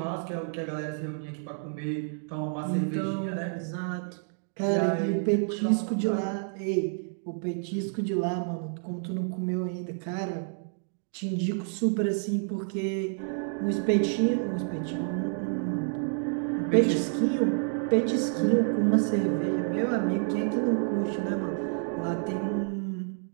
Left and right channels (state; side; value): silent; left; 59 dB below the other